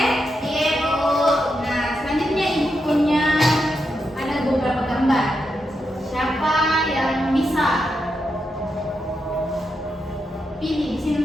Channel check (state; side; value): normal; both; correlation 0.85